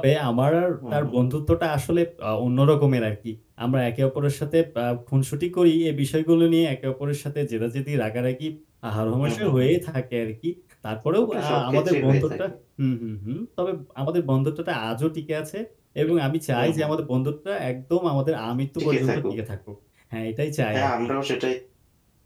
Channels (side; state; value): both; identical; correlation 1.00